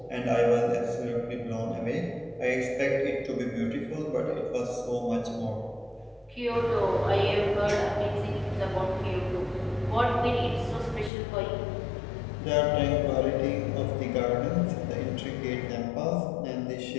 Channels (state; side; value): drops out; right; at 11.1 s